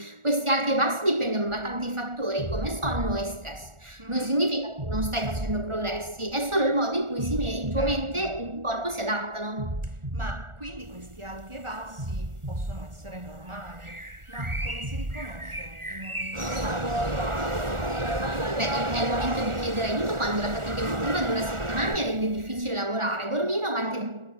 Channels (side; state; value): left; late; 1.4 ms